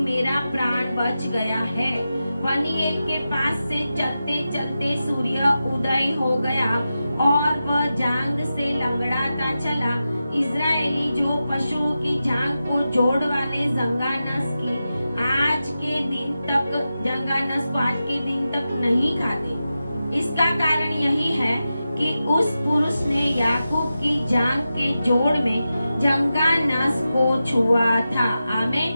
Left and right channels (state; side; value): inverted; both; correlation -0.91